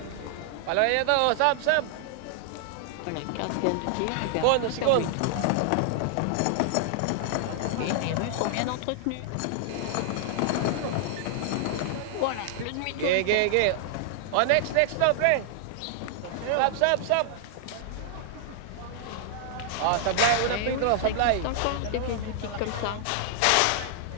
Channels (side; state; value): both; different; correlation 0.00